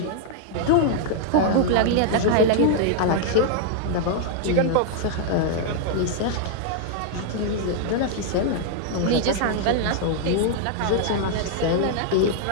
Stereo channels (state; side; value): different; both; correlation 0.00